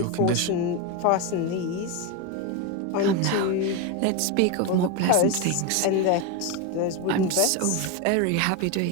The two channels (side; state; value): both; different; correlation 0.03